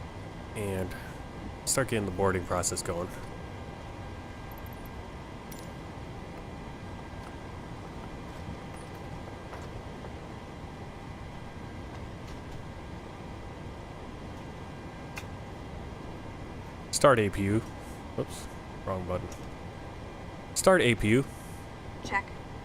And start getting the boarding process going. Start APU. Oops, wrong button. Start APU. Check.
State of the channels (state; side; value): identical; both; correlation 1.00